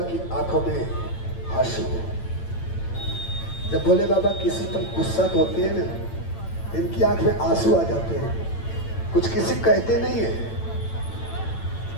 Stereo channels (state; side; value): late; right; 8.9 ms